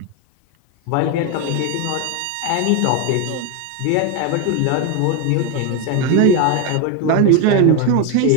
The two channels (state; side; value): different; both; correlation 0.02